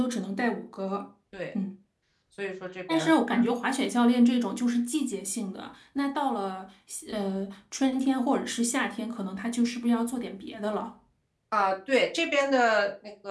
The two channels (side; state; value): both; identical; correlation 1.00